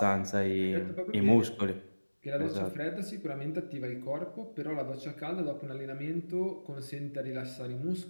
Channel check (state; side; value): inverted; both; correlation -1.00